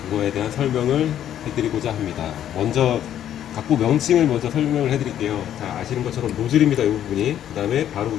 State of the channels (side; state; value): right; quieter; 10.7 dB